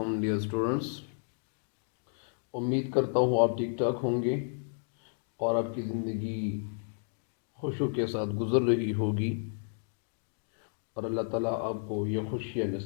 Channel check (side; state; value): right; silent; digital silence